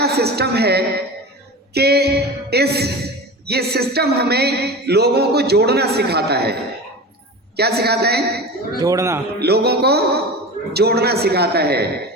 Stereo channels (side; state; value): both; normal; correlation 0.31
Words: सिस्टम है कि ये सिस्टम हमें लोगों को जोड़ना सिखाता है। क्या सिखाता है? जोड़ना। लोगों को जोड़ना सिखाता है,